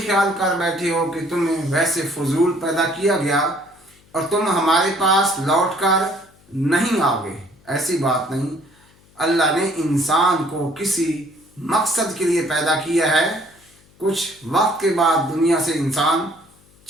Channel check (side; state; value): left; noise; hum, 30 dB below the sound